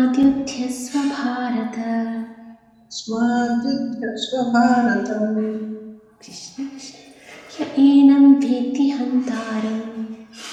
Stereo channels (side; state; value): both; identical; correlation 1.00